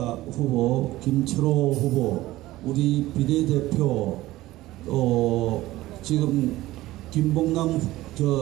후보, 김철호 후보, 우리 비례대표, 지금 김봉남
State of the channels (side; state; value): left; quieter; 17.0 dB